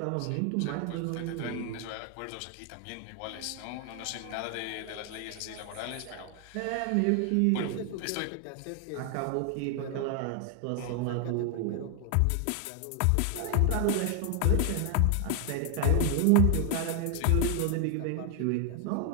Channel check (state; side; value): different; both; correlation 0.00